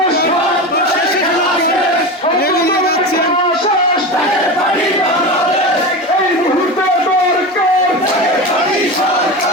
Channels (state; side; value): normal; both; correlation 0.24